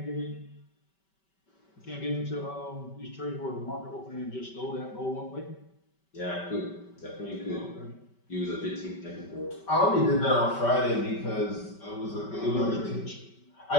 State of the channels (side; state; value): right; late; 5.2 ms